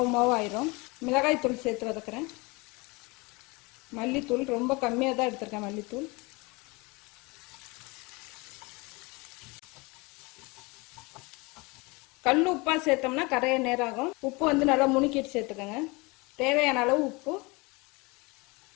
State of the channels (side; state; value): right; quieter; 26.1 dB